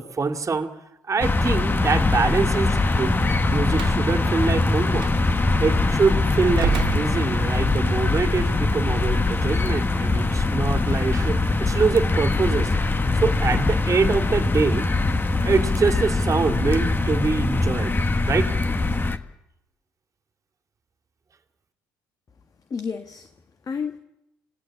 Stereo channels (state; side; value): normal; both; correlation 0.82